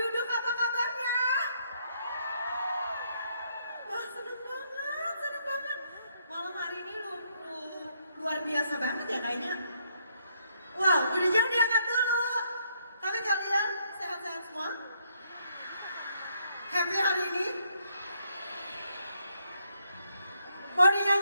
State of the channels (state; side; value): inverted; both; correlation -0.72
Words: apa kabarnya? Wah seneng banget. Malam hari ini lu luar biasa banget ya kayaknya. Wow, udah jangan diangkat dulu. Tapi kalian sehat-sehat semua? Happy hari ini? Mau